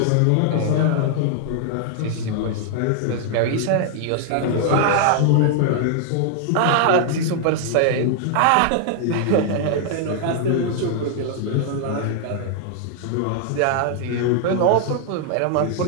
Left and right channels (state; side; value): different; both; correlation 0.00